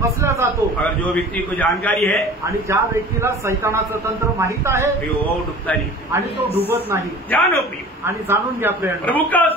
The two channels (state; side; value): normal; both; correlation 0.42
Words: फसल्या जातो। अगर जो व्यक्ति को जानकारी है आणि ज्या व्यक्तीला सैतानाचं तंत्र माहित आहे प्रियो, वो डूबता नहीं। आणि तो डुबत नाही। जानो प्रियो, आणि जाणून घ्या प्रेम, प्रभु का